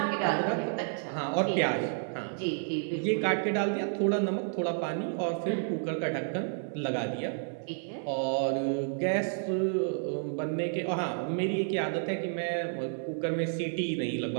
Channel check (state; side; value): silent; left; 57 dB below the other